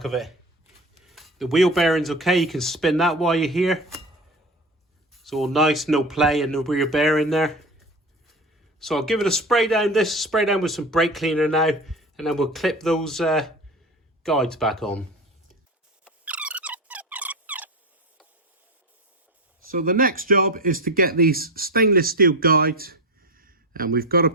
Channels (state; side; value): normal; both; correlation 0.26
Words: of it. The wheel bearing's okay, you can spin that while you're here. It's all nice, no play and no rear bearing there. So I'll give it a spray down, with some brake cleaner now, and then we'll clip those guides back on. So the next job is to get these stainless steel guides, and we've got to